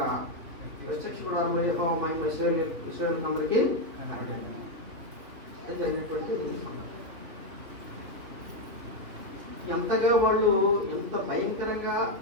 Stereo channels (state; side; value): late; left; 3.4 ms